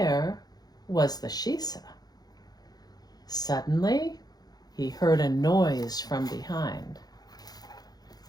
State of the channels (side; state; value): right; late; 0.19 ms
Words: was the Shisa? Suddenly, he heard a noise from behind.